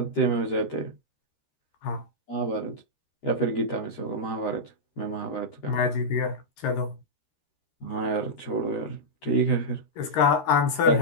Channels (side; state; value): right; late; 13 ms